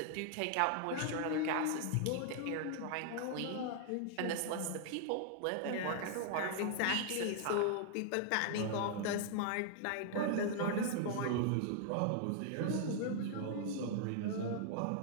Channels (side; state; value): both; different; correlation 0.00